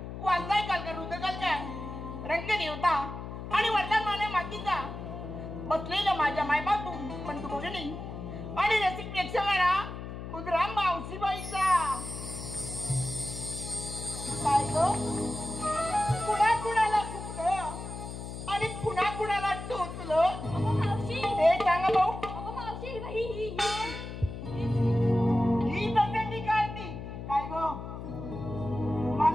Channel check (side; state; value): left; noise; hum, 9 dB below the sound